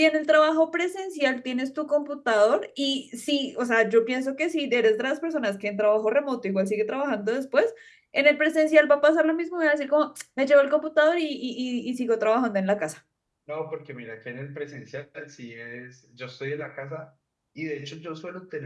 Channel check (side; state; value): both; identical; correlation 1.00